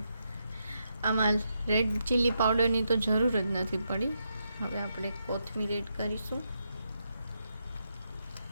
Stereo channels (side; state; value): both; inverted; correlation -0.82